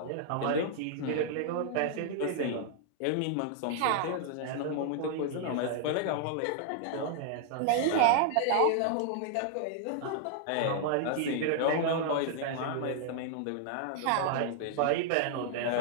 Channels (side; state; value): both; different; correlation 0.00